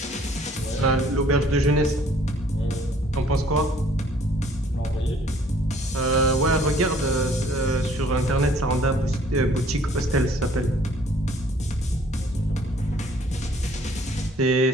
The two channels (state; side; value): normal; both; correlation 0.58